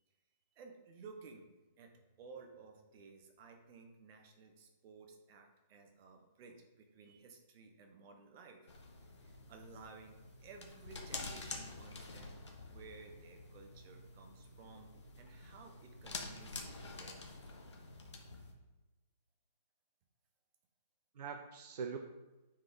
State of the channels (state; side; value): inverted; both; correlation -0.39